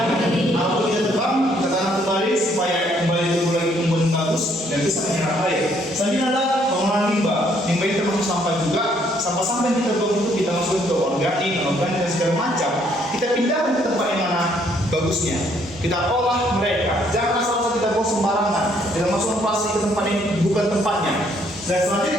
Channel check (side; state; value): both; normal; correlation 0.67